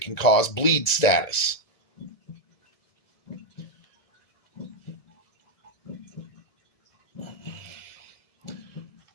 cause bleed status.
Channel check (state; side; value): late; right; 1.9 ms